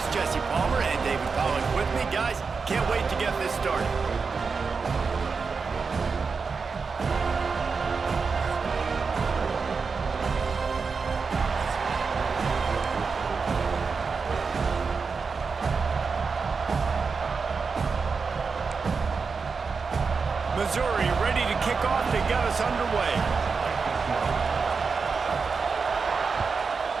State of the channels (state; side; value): quieter; left; 5.0 dB